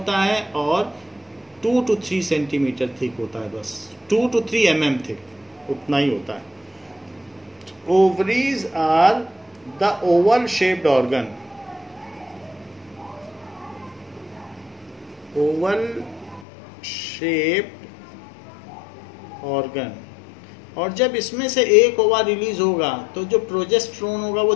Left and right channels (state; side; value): drops out; right; at 16.4 s